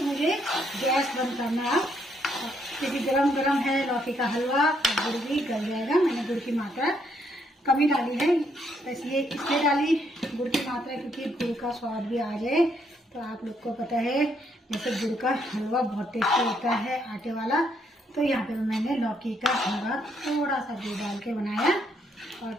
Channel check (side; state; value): both; normal; correlation 0.73